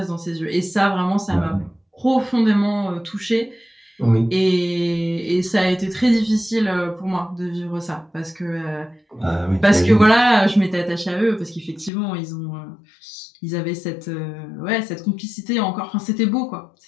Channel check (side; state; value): right; drops out; at 11.9 s